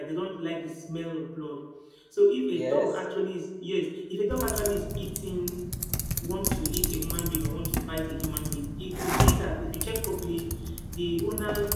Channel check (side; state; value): both; identical; correlation 1.00